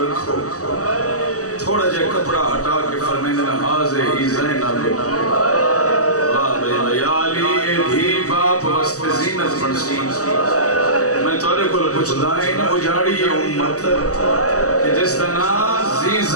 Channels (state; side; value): late; right; 0.66 ms